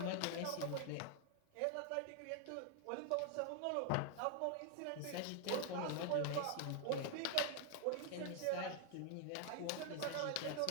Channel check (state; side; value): different; both; correlation 0.00